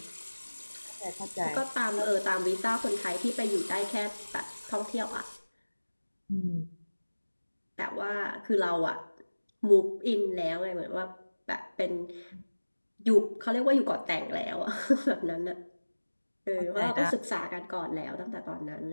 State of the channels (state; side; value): inverted; both; correlation -1.00